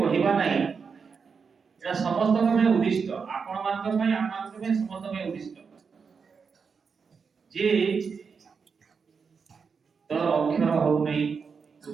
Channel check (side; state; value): left; quieter; 5.6 dB